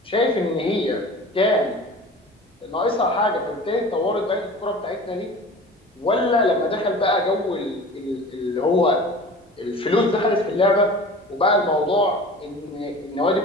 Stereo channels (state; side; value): normal; both; correlation 0.39